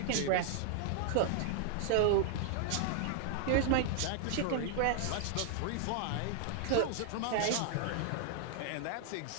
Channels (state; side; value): different; both; correlation -0.01